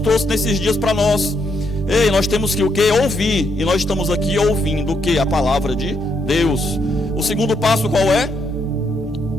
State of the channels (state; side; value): normal; both; correlation 0.76